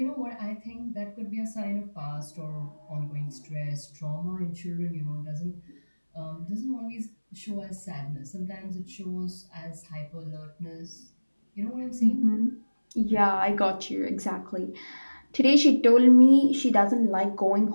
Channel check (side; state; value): both; inverted; correlation -1.00